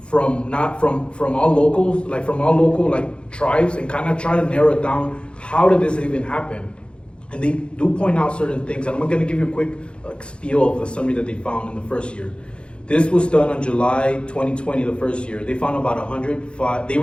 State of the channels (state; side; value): late; right; 0.056 ms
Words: all locals, from all local tribes, and kind of try to narrow it down. How did this even happen? And they do point out certain things, and I'm going to give you a quick spiel of the summary that they found in the first year. This was done on July 2020, the first year. They found about 105, they